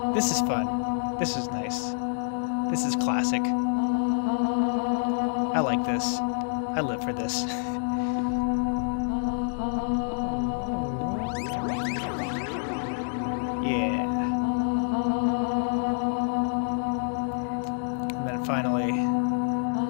This is fun. This is nice. This is classic. I like this. I live for this. Yeah. And then finally,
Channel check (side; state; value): right; silent; 60 dB below the other